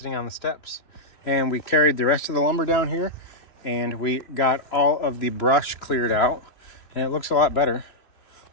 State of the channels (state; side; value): late; right; 3.0 ms